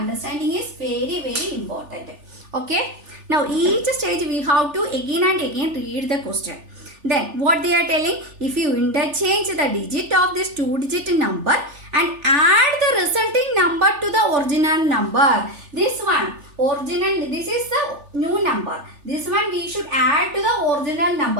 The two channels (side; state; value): left; late; 3.4 ms